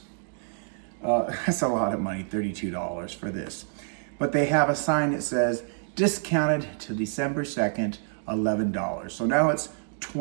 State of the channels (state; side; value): silent; left; 57 dB below the other